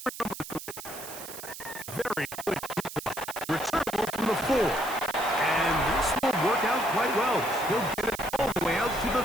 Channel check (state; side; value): noise; right; hiss, 11 dB below the sound